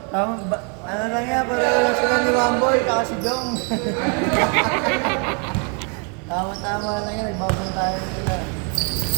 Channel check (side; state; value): left; quieter; 37.5 dB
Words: Ano lang yan, pareho lang sila ni Wamboy, kaka si Jong. Tama-tama lang yan, nagbabantayan sila.